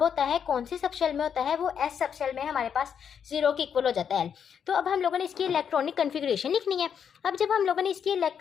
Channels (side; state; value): right; quieter; 7.7 dB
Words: होता है, कौन सी सबशेल में होता है, वो S सबशेल में हमारे पास 0 के इक्वल हो जाता है L। तो अब हम लोगों ने इसकी इलेक्ट्रॉनिक कन्फिग्रेशन लिखनी है। अब जब हम लोगों ने इसकी